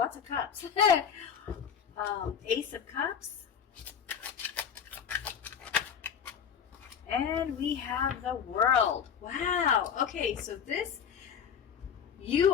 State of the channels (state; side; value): quieter; right; 7.6 dB